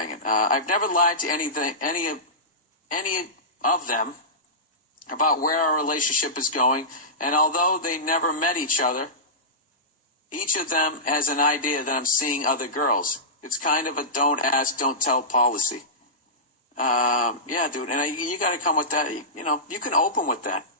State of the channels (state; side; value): normal; both; correlation -0.16